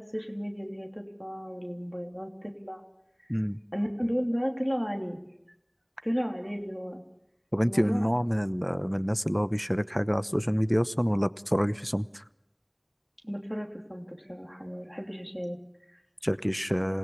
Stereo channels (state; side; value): identical; both; correlation 1.00